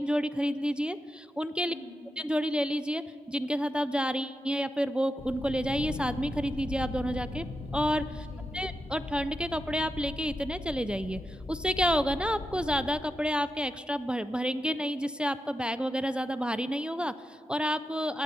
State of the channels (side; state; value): both; normal; correlation 0.88